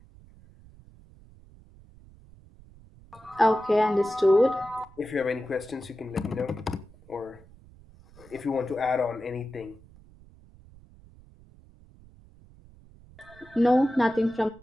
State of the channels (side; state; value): right; noise; rumble, 24 dB below the sound